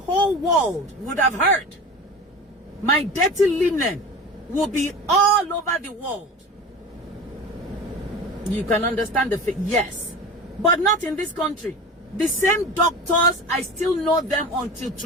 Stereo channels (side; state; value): both; normal; correlation 0.33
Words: world would have heard. My dirty linen will be all over the world. You can understand the fact, yes. But not in this country. The same doctors, I still know them until